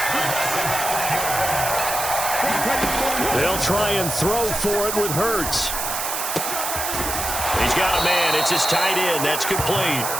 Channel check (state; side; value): noise; right; hiss, 3 dB below the sound